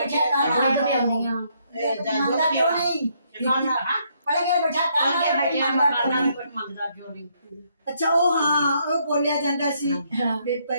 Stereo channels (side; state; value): both; inverted; correlation -0.72